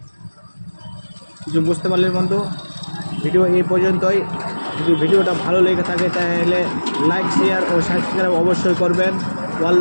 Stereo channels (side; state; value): both; inverted; correlation -1.00